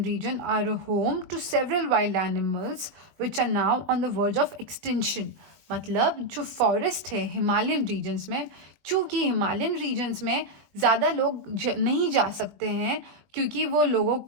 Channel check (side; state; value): left; late; 20 ms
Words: region are a home to several wild animals which are now on the verge of extinction. मतलब जो फॉरेस्ट है हिमालयन रीजन्स में, चूँकि हिमालयन रीजन्स में ज़्यादा लोग नहीं जा सकते हैं, क्योंकि वो लोगों